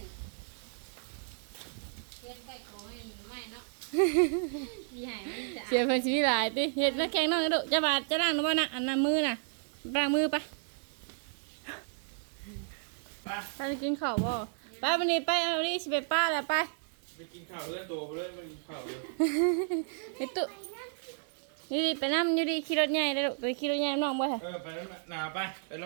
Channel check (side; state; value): left; silent; digital silence